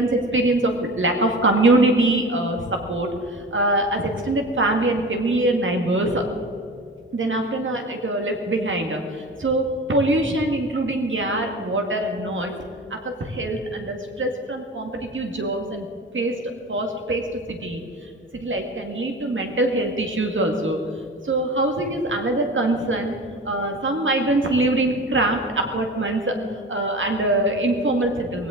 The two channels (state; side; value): normal; both; correlation 0.35